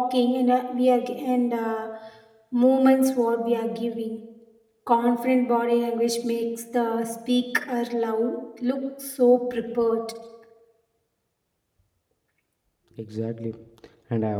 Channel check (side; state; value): both; identical; correlation 1.00